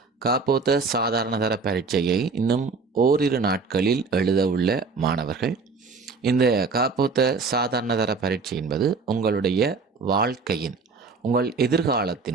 காப்போத்த சாதாரணதர பரீட்சையை இன்னும் ஓரிரு நாட்களில் எழுத உள்ள மாணவர்கள், இந்த காப்போத்த சாதாரணதர பரீட்சை என்பது உங்களுடைய வாழ்க்கையின், உங்கள்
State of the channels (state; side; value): quieter; left; 4.5 dB